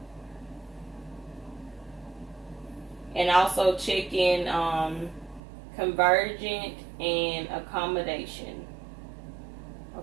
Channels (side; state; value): left; drops out; at 5.4 s